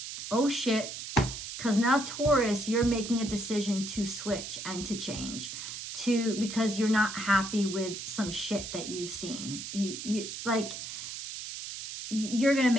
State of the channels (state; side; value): noise; right; hiss, 8 dB below the sound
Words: Oh shit. Because now Taurus, you're making a decision to switch and to change. Because you're not happy with some shit that you've seen. You're going to